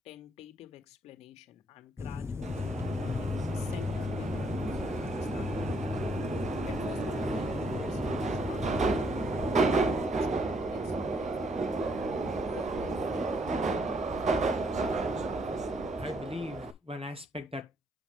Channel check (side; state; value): both; normal; correlation 0.70